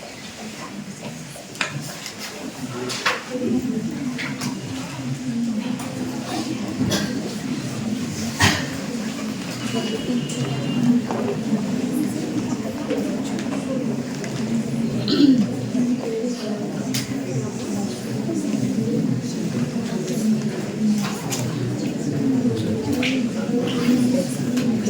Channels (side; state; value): both; identical; correlation 1.00